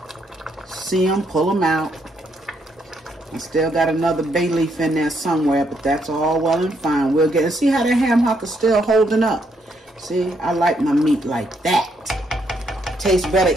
See them, pull them out. I still got another bay leaf in there somewhere, but that's all well and fine. We'll get, see how the ham hock is still holding up. See, I like my meat like that. Tastes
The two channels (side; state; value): both; normal; correlation 0.75